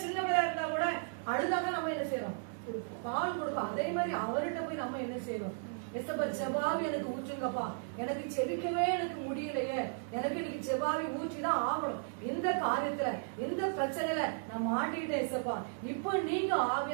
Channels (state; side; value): silent; left; 54 dB below the other